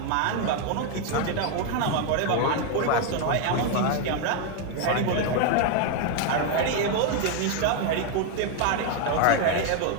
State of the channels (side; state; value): both; different; correlation 0.01